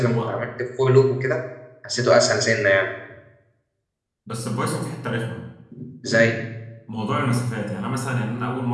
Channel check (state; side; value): identical; both; correlation 1.00